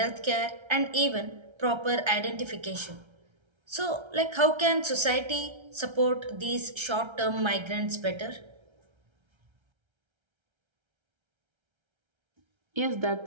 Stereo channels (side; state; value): left; late; 1.3 ms